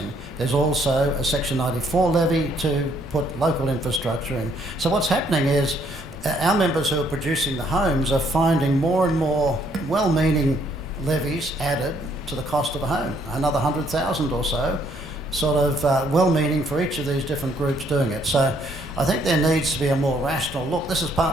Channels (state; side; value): noise; left; hum, 19 dB below the sound